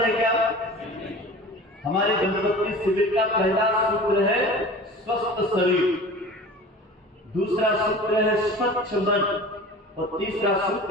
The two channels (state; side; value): normal; both; correlation 0.39